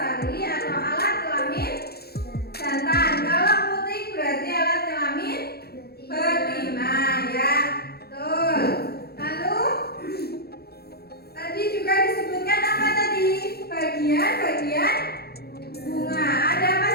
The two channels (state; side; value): late; right; 0.46 ms